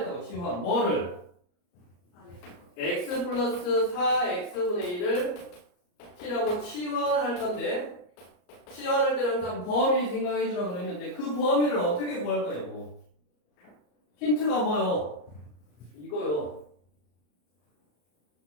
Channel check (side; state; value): right; late; 34 ms